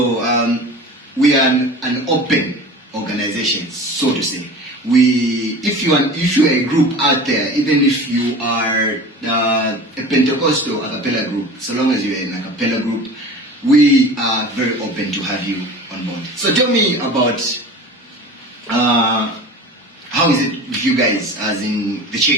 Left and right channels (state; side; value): normal; both; correlation 0.37